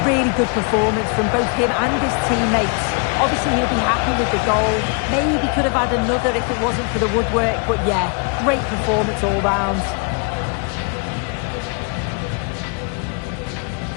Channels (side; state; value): right; quieter; 38.5 dB